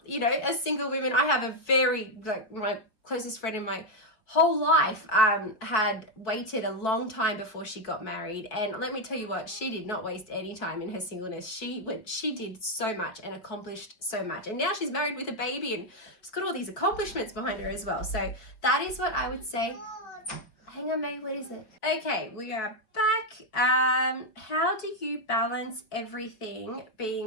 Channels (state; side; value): late; right; 4.7 ms